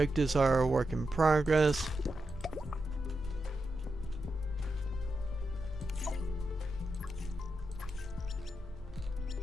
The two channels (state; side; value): normal; both; correlation 0.88